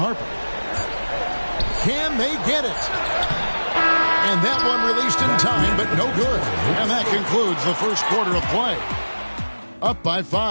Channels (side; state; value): both; inverted; correlation -1.00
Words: Can they get it? And that one released in time, but no good. And that concludes the first quarter of play. Up by